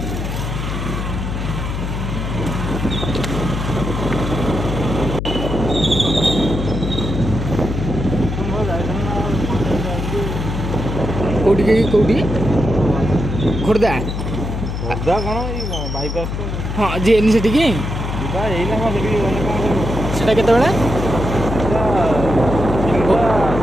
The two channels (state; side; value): noise; left; hum, 4 dB below the sound